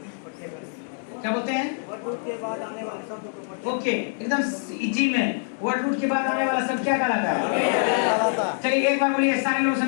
क्या बोलते हैं? वर्ड रूट के बाद आने वाले शब्द को ओके एकदम इजी में वर्ड रूट के बाद आने वाला शब्द क्या कहलाता है? चलिए एक बार बोलिए, सारे लोग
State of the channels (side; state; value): right; silent; 62 dB below the other